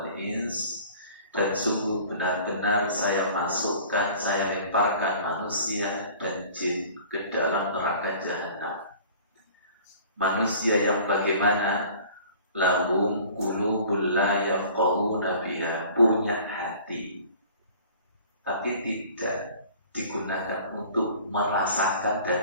ins. Dan sungguh benar-benar saya masukkan, saya lemparkan manusia dan jin ke dalam neraka jahanam. Manusia yang bagaimana? Lahum qulubul la yafqahuna biha, punya hati tapi tidak digunakan untuk merasakan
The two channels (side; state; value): both; inverted; correlation -0.47